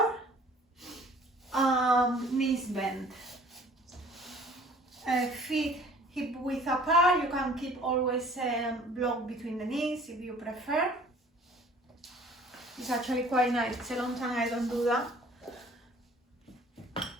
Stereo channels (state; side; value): normal; both; correlation 0.52